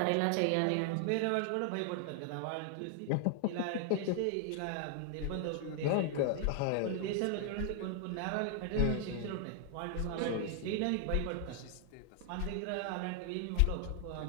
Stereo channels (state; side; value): different; both; correlation 0.00